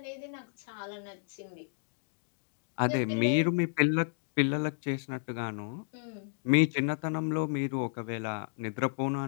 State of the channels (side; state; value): right; silent; digital silence